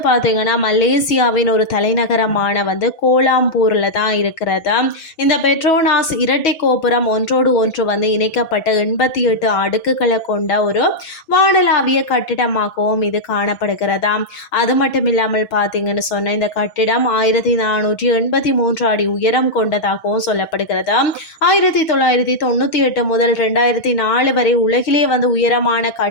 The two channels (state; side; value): late; right; 6.2 ms